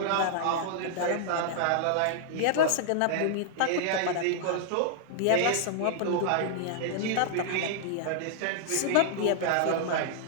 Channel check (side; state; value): both; different; correlation -0.01